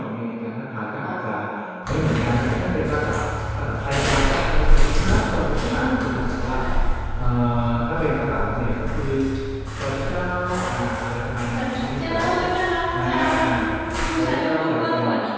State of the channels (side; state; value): both; identical; correlation 1.00